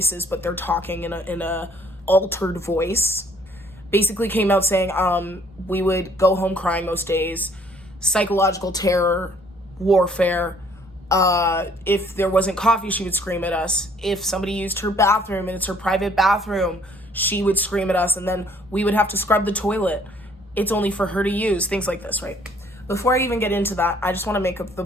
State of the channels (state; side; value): normal; both; correlation 0.60